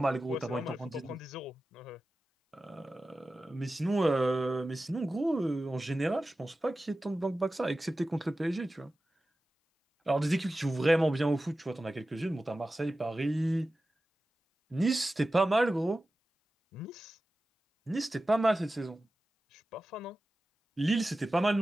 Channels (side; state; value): both; normal; correlation 0.95